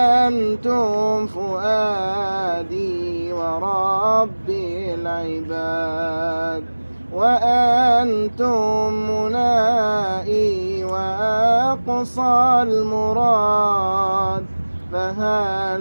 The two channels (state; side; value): inverted; both; correlation -1.00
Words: فؤادي وربي العباد، وأنتم منائي وأقصى المراد.